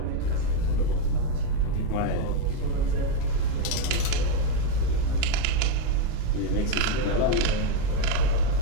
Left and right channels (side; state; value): both; different; correlation 0.03